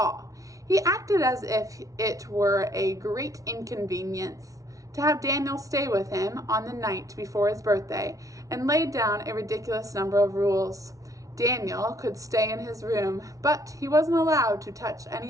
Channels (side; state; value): left; late; 0.17 ms